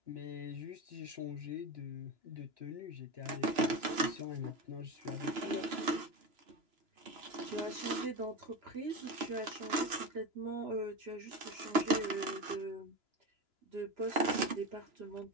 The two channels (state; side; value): late; left; 2.9 ms